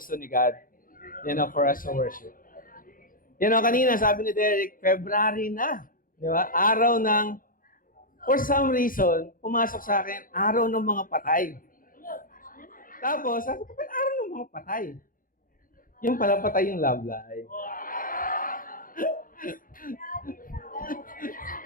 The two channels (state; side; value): late; right; 0.40 ms